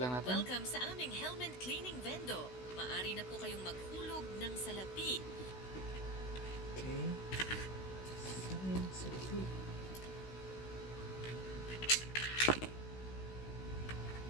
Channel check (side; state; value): right; late; 16 ms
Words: lang natin. Welcome sa aming helmet cleaning vendo. Maari na po kayong maghulog ng salapi. Okay. Salapi.